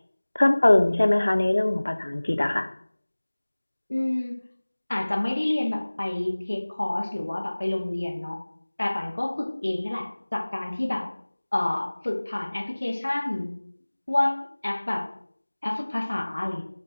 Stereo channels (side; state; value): both; inverted; correlation -1.00